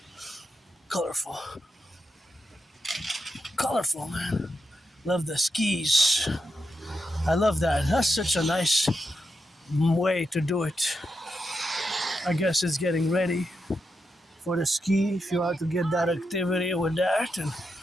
Colorful. Colorful, man. Love the skis. I love that. That's such a nice way to do it. I guess it's getting ready for the ski. If you are to get that activity with that and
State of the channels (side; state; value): both; normal; correlation 0.86